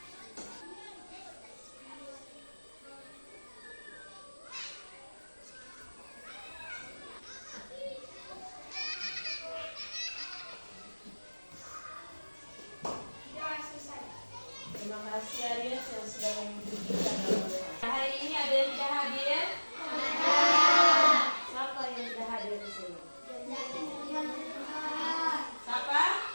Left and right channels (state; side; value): inverted; both; correlation -1.00